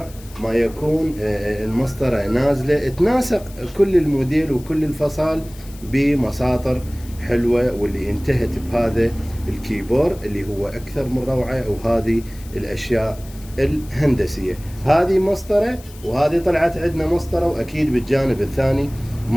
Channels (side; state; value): left; noise; hiss, 21 dB below the sound